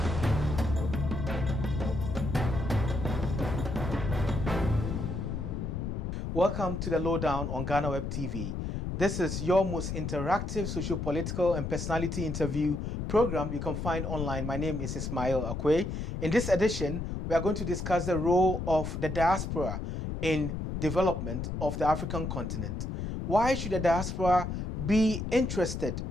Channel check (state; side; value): noise; left; rumble, 4 dB below the sound